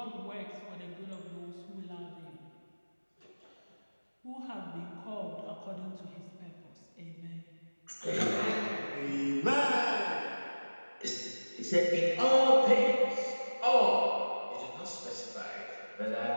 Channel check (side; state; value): both; inverted; correlation -1.00